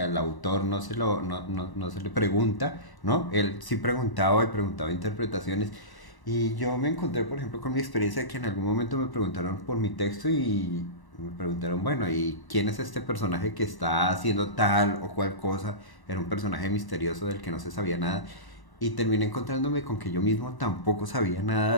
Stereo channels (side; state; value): right; late; 1.0 ms